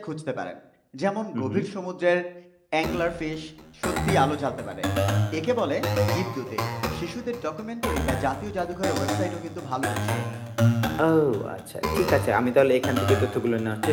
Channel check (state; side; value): identical; both; correlation 1.00